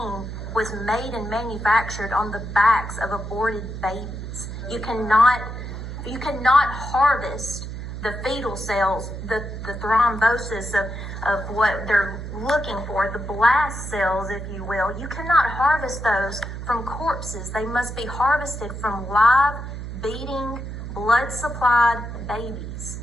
was made and manufactured on the backs of aborted babies. You cannot harvest the fetal cells, the thrombosis of what they're looking for, the blast cells, if you will. You cannot harvest those from corpses. They must be harvested from live, beating, blood-supplied babies.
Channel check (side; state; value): right; noise; hum, 8 dB below the sound